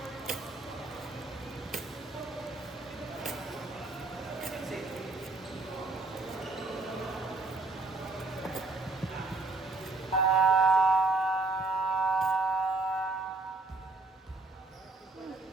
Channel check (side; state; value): left; quieter; 3.2 dB